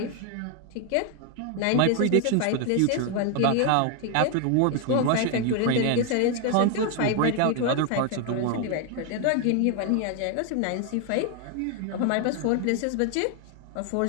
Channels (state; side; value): different; both; correlation 0.01